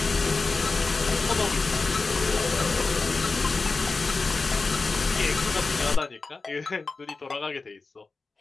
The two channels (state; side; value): quieter; right; 4.0 dB